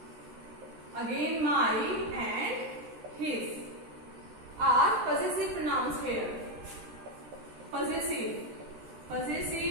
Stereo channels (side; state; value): left; late; 13 ms